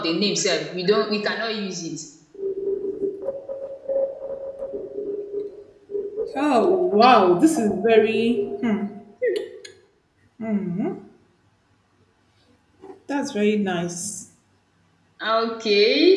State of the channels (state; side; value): identical; both; correlation 1.00